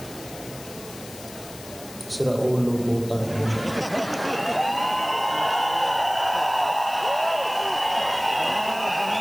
Sira ulo, butang.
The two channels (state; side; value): noise; left; hiss, 16 dB below the sound